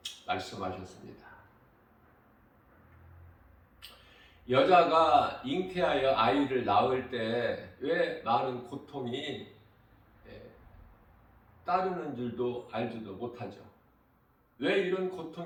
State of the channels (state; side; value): identical; both; correlation 1.00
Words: 말씀하셨습니다. 여자가 잉태하여 아이를 낳을 때 왜 많은 고통이 따르는 줄도 알지도 못하죠. 왜 이런